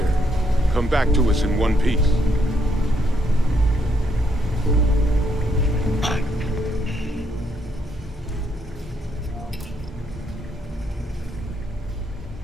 Come back to us in one piece.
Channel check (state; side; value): normal; both; correlation 0.75